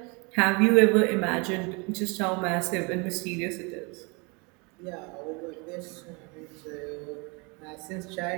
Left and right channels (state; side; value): quieter; left; 30.0 dB